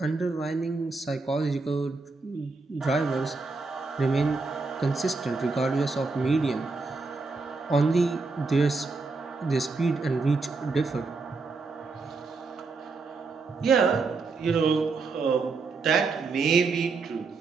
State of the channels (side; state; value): left; quieter; 4.1 dB